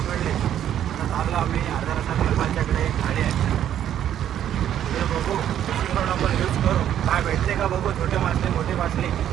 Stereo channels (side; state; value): left; quieter; 10.6 dB